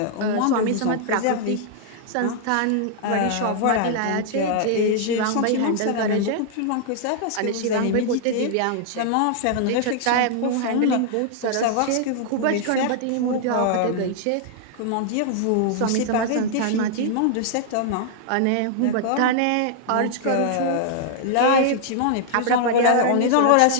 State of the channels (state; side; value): different; both; correlation -0.01